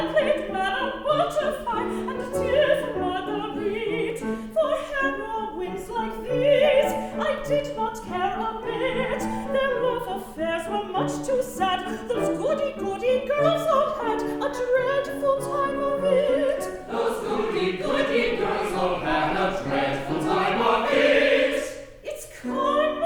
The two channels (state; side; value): identical; both; correlation 1.00